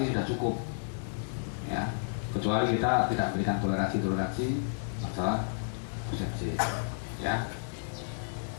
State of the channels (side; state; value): right; silent; digital silence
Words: sudah cukup. Ya. Kecuali kita tidak berikan toleransi masalah absensi. Ya.